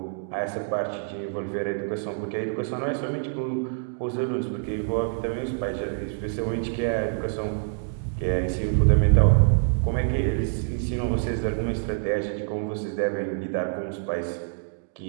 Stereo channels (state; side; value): silent; left; digital silence